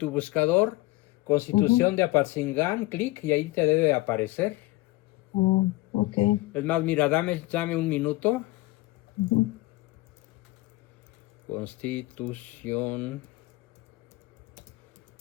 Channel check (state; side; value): quieter; right; 20.4 dB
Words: buscador Constitución de Apatzingán, clic y ahí te debe aparecer. Oh, ok. Es más, mira, dame un minuto. Ujú. Constitución